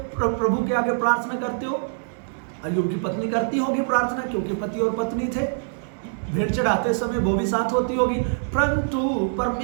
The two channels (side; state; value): left; silent; digital silence